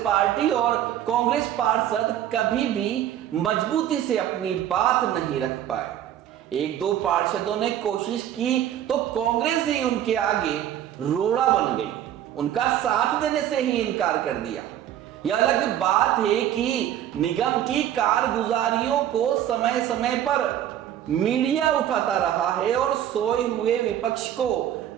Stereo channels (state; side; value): quieter; left; 11.2 dB